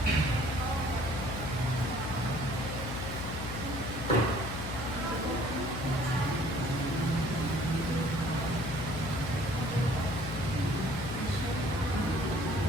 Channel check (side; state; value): left; noise; hum, 7 dB below the sound